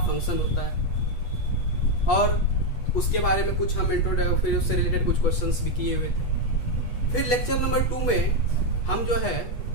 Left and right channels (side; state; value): right; late; 8.2 ms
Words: होता है, और उसके बारे में कुछ हम इंट्रोडक्शन, फिर उससे रिलेटेड कुछ क्वेश्चंस भी किए हुए थे। फिर लेक्चर नंबर 2 में हम जो